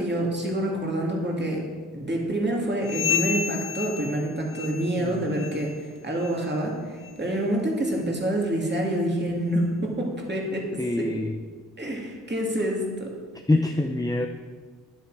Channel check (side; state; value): both; normal; correlation 0.59